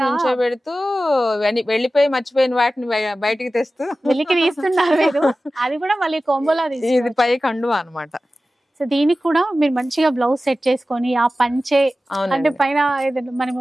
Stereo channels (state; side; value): normal; both; correlation 0.95